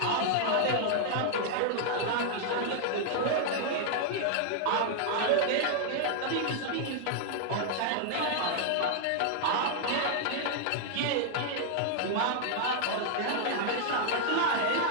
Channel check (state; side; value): different; both; correlation 0.00